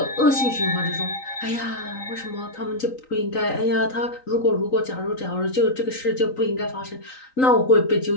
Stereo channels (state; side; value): late; right; 3.9 ms